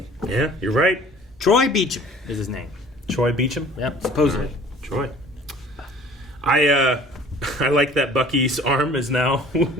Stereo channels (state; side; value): normal; both; correlation 0.49